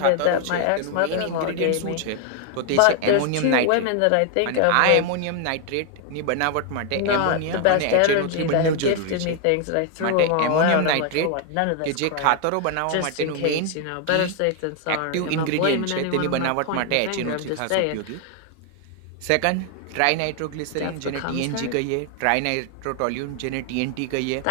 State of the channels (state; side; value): different; both; correlation 0.00